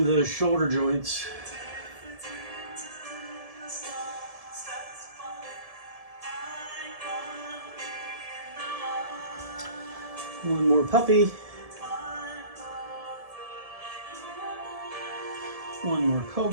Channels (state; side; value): late; left; 1.7 ms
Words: the shoulder joints. One more puppy. One more